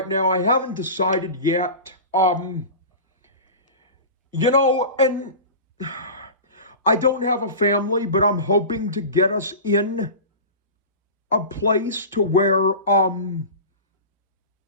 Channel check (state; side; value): inverted; both; correlation -0.32